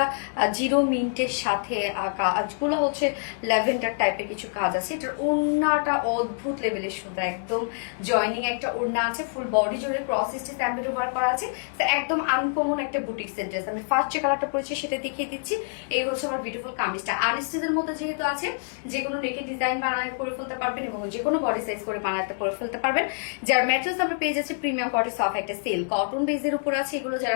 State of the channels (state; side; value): silent; right; digital silence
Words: জিরো মিন্টের সাথে কাজগুলো হচ্ছে ল্যাভেন্ডার টাইপের কিছু কাজ আছে। এটার ওড়নাটা অদ্ভুত লেভেলের সুন্দর, একদম জয়নিং একটা ওড়না আছে, ফুল বডি জুড়ে ক্রস স্টিচ এমব্রয়ডারি ওয়ার্ক করা আছে। একদম আনকমন একটা বুটিক্সের ড্রেস। আমি ফার্স্ট যে কালারটা পরেছি সেটা দেখিয়ে দিচ্ছি। এই হচ্ছে আমার বিউটিফুল কামিজটা, আনস্টিচের মধ্যে যেহেতু আছে যে কোনো নেকের ডিজাইন বানায় করে ফেলতে পারবেন এবং যে কোনো বডি সাইজ করে বানাতে করে ফেলতে পারবেন। যার ম্যাটেরিয়ালস আমরা পেয়ে যাচ্ছি প্রিমিয়াম কোয়ালিটি সফট একটা সেল কটন বেসের উপর আছে। এগুলো